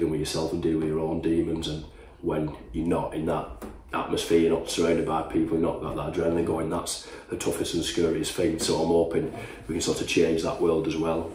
with yourself and dealing with your own demons. And when you're not in that atmosphere, you're not surrounded by people, you're not got that adrenaline going, that's the toughest and scariest thing. So I'm hoping we can sort of change that world as well.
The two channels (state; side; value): identical; both; correlation 1.00